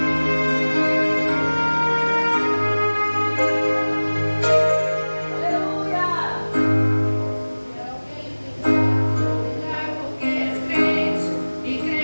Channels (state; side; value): inverted; both; correlation -1.00